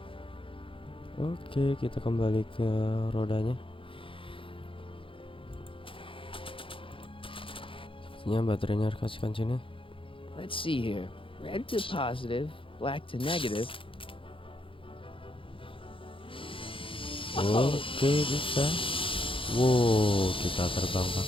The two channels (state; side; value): late; right; 0.25 ms